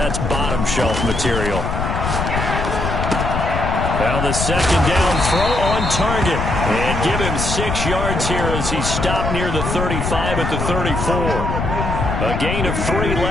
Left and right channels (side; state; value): left; noise; rumble, 2 dB below the sound